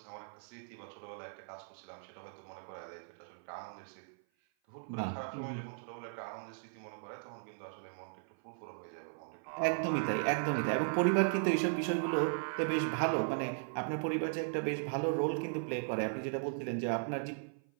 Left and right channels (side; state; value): left; silent; 53 dB below the other